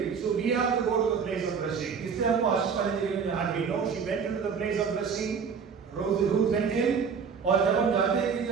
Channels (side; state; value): left; quieter; 6.2 dB